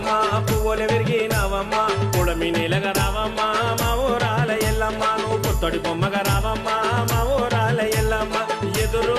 పువ్వులు విరిగినావమ్మ పుడమి నేలగా రావమ్మ మా ఊరాల ఎల్లమ్మ నువ్వు పుత్తడి బొమ్మగా రావమ్మ మా ఊరాల ఎల్లమ్మ ఎదురు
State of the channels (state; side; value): identical; both; correlation 1.00